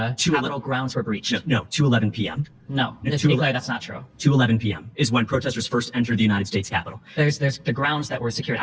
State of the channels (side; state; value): both; identical; correlation 1.00